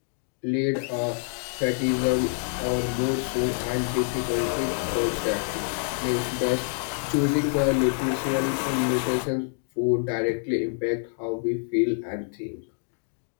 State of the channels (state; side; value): silent; right; digital silence